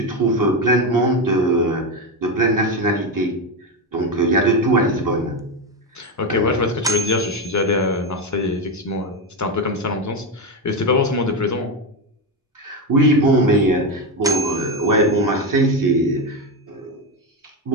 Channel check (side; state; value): both; normal; correlation 0.13